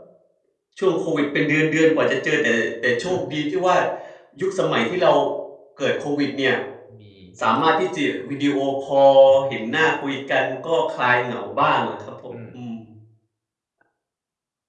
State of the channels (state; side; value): identical; both; correlation 1.00